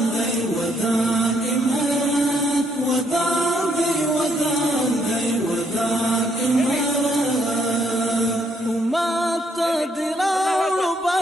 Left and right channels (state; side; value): normal; both; correlation 0.72